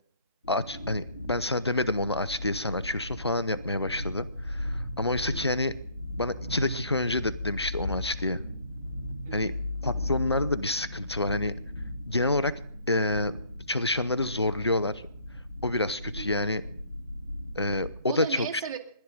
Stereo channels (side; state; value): both; inverted; correlation -0.59